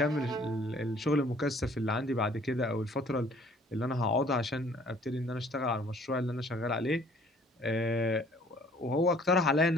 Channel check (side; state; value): both; normal; correlation 0.56